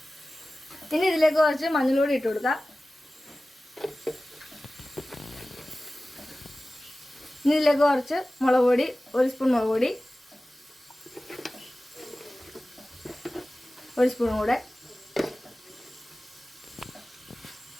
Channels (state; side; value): normal; both; correlation 0.96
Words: ഇനി ഇതിലേക്ക് കുറച്ച് മഞ്ഞൾപ്പൊടി ഇട്ട് കൊടുക്കാം. ഇനി ഇതിലേക്ക് കുറച്ച് മുളക് പൊടി, 1 സ്പൂൺ മുളക് പൊടി, 1 സ്പൂൺ കൂടെ.